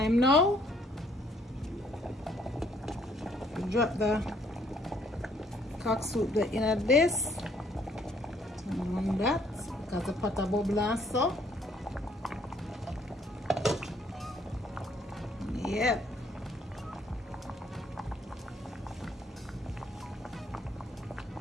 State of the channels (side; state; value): both; normal; correlation 0.65